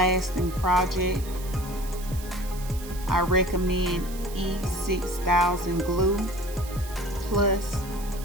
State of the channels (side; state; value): right; noise; hiss, 15 dB below the sound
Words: project, I recommend E6000 glue plus